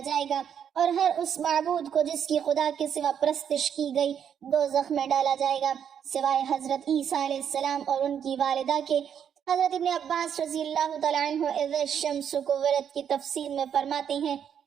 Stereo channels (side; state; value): left; quieter; 8.4 dB